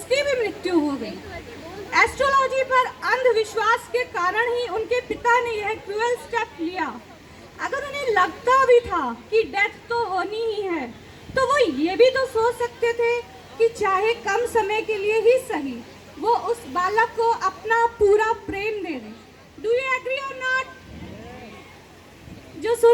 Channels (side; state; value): both; identical; correlation 1.00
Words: भी मृत्यु हो गई। एस्ट्रोलॉजी पर अंधविश्वास के कारण ही उनके पिता ने यह क्रूअल स्टेप लिया। अगर उन्हें लगता भी था कि डेथ तो होनी ही है, तो वो ये भी तो सोच सकते थे कि चाहे कम समय के लिए ही सही, वो उस बालक को अपना पूरा प्रेम दे दें। डू यू एग्री और नॉट? जो